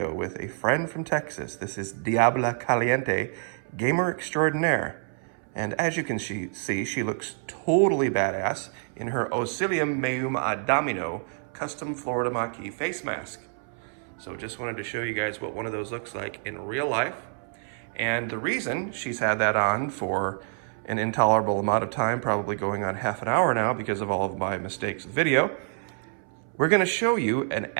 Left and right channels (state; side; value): silent; left; 60 dB below the other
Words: with a friend from Texas. This is Diabla Caliente, gamer extraordinaire. And as you can see, she looks totally badass in her Osilium Meum Adamino custom Florida Maquis face mask. So just wanted to show you guys what one of those looks like in real life. And the reason she's had that on for an intolerable amount of time, probably going on half an hour now because of all of my mistakes with video, we're going to show you an